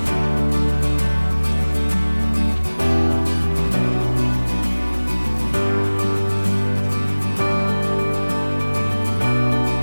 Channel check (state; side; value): inverted; both; correlation -1.00